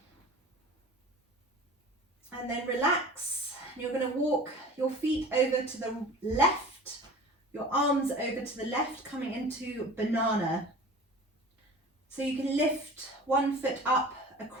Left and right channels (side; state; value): both; normal; correlation 0.40